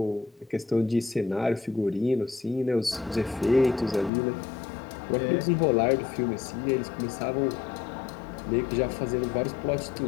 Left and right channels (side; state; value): right; drops out; at 4.1 s